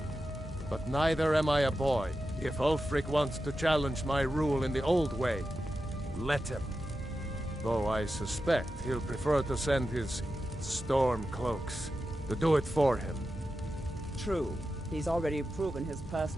But neither am I a boy. If Ulfric wants to challenge my rule in the old way, let him. Though I suspect he'll prefer to send his storm cloaks to do it for him. True. He's already proven his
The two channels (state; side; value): normal; both; correlation 0.91